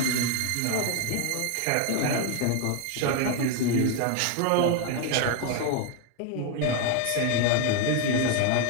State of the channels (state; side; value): different; both; correlation 0.01